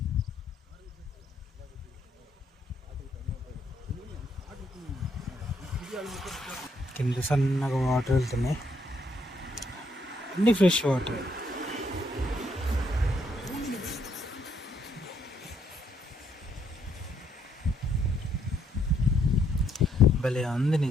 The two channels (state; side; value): normal; both; correlation 0.72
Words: కింద సన్నగా వాటర్ వెళ్తున్నాయి, అన్ని ఫ్రెష్ వాటర్. భలే ఉంది